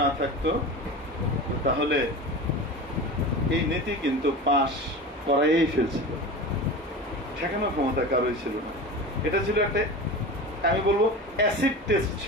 না থাকতো, তাহলে এই নীতি কিন্তু পাশ করাই ফেলছিল, ঠেকানোর ক্ষমতা কারোই ছিল না। এটা ছিল একটা, আমি বলবো অ্যাসিড টেস্ট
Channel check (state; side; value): normal; both; correlation 0.30